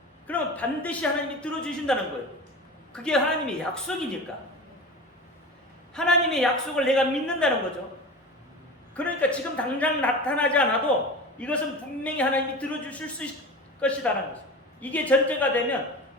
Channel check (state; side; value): normal; both; correlation 0.31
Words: 그러면 반드시 하나님이 들어주신다는 거예요. 그게 하나님의 약속이니까. 하나님의 약속을 내가 믿는다는 거죠. 그러니까 지금 당장 나타나지 않아도 이것은 분명히 하나님이 들어주실 수 있을 것이라는 거죠. 이게 전제가 되면